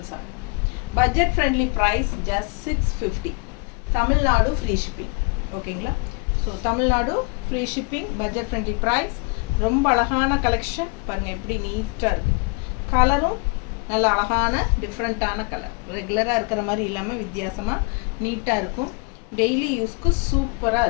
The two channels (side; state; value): right; quieter; 32.9 dB